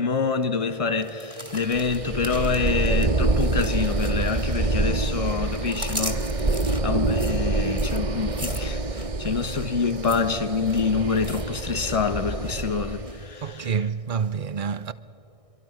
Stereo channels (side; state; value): left; late; 1.6 ms